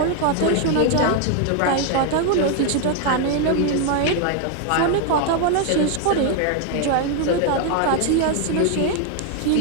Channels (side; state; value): both; different; correlation 0.00